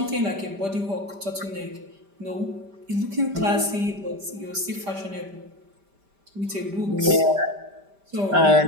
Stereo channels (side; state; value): left; late; 5.1 ms